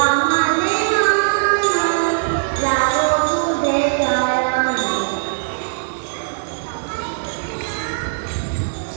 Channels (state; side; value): silent; left; 65 dB below the other